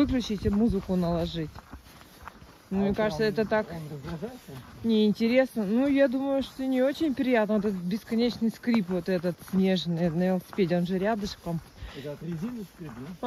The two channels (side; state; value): both; identical; correlation 1.00